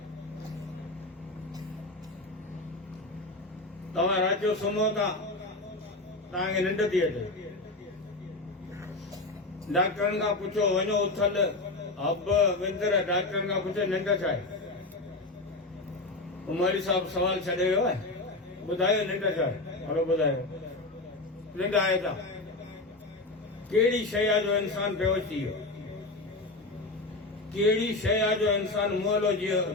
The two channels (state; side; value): quieter; right; 3.0 dB